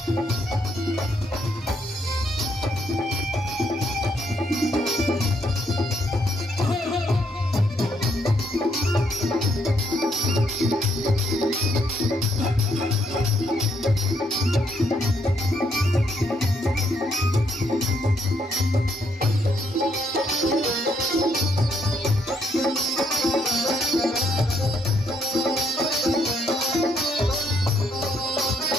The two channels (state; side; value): normal; both; correlation 0.72